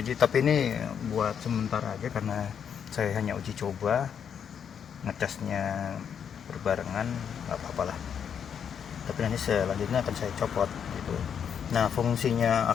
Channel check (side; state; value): right; quieter; 7.8 dB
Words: tapi ini buat sementara aja karena saya hanya uji coba, ngecasnya berbarengan, nggak apa-apa lah. Tapi nanti selanjutnya akan saya copot gitu. Nah, fungsinya